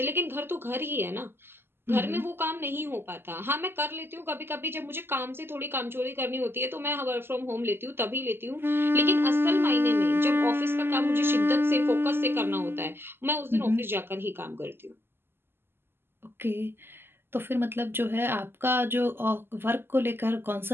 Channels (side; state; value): left; late; 0.11 ms